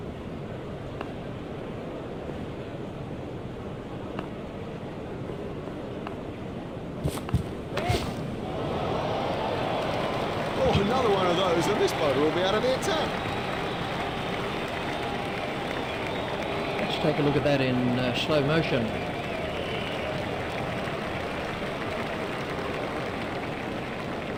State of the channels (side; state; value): both; identical; correlation 1.00